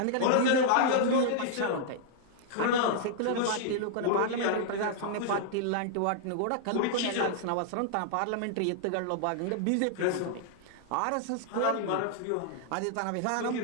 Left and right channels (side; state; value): both; different; correlation -0.01